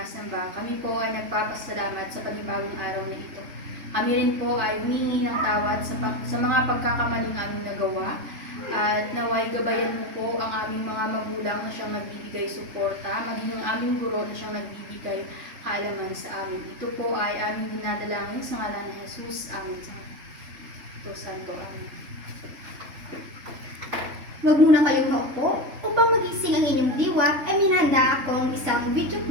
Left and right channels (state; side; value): late; left; 3.4 ms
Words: Kami po ay nagpapasalamat sa panibagong araw na ito. Kami rin po ay humingi ng tawad sa mga pagkakamaling aming nagawa. At naway gabayan mo po ang aming mga magulang na siyang nagbibigay suporta, maging ang aming guro na siyang nagbibigay kaalaman sa amin. Ito po ay aming dinadalangin sa ngalan ni Jesus. Amen. Ito Santo. Amen. Huwag muna kayong maupo. Upang magising ang inyong diwa, ay minahanda akong isang video